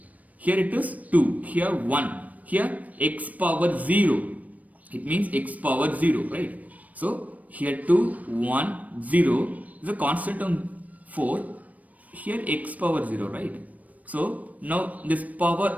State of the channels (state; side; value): late; left; 0.072 ms